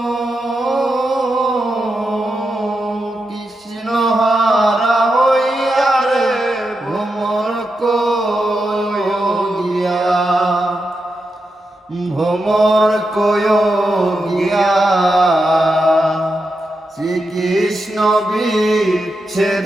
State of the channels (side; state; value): both; normal; correlation 0.87